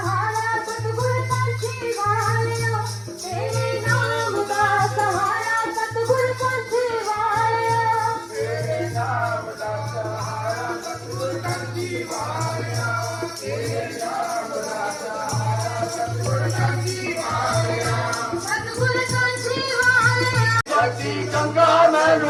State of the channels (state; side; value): identical; both; correlation 1.00